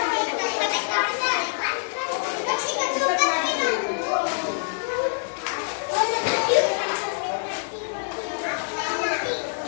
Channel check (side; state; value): right; silent; digital silence